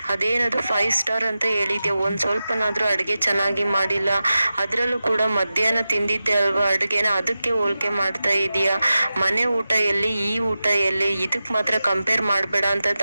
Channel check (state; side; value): inverted; both; correlation -0.93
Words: ಅದೇನದು 5 ಸ್ಟಾರ್ ಅಂತ ಹೇಳಿದ್ಯಾ, ಒಂದ್ ಸ್ವಲ್ಪನಾದ್ರೂ ಅಡ್ಗೆ ಚೆನ್ನಾಗಿ ಮಾಡಿಲ್ಲ, ಅದ್ರಲ್ಲೂ ಕೂಡ ಮಧ್ಯಾಹ್ನ ತಿಂದಿದ್ದೆ ಅಲ್ವಾ ಅಡ್ಗೆನ, ಅದಕ್ಕೆ ಹೋಲಿಕೆ ಮಾಡ್ತಾ ಇದೀಯಾ, ಮನೆ ಊಟ ಎಲ್ಲಿ ಈ ಊಟ ಎಲ್ಲಿ, ಇದಕ್ ಮಾತ್ರ ಕಂಪೇರ್ ಮಾಡ್ಬೇಡ ಅಂತ